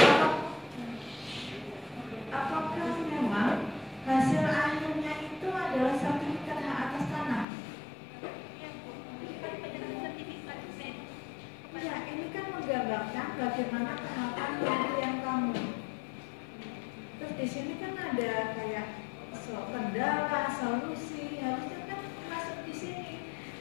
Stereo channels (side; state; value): right; drops out; at 7.5 s